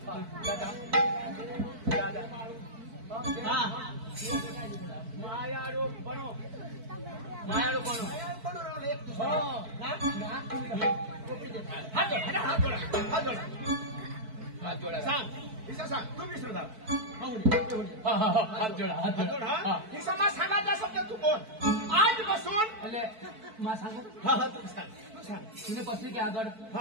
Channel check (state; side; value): late; left; 4.5 ms